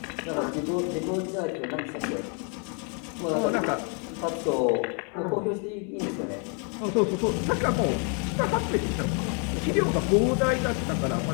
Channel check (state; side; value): quieter; right; 39.0 dB